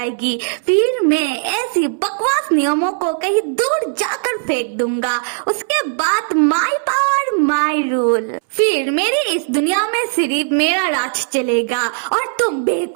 फिर मैं ऐसी बकवास नियमों को कहीं दूर जाकर फेंक दूंगा। उसके बाद माई पावर माई रूल, फिर मेरी इस दुनिया में सिर्फ मेरा राज चलेगा। और तुम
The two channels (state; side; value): silent; left; 66 dB below the other